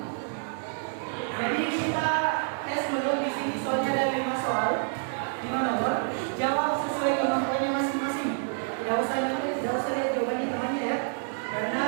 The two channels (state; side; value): silent; left; 59 dB below the other